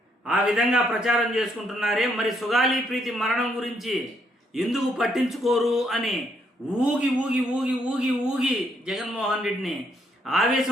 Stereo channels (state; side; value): normal; both; correlation 0.73